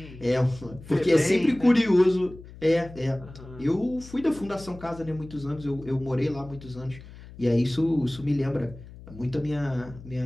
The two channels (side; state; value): left; noise; hum, 17 dB below the sound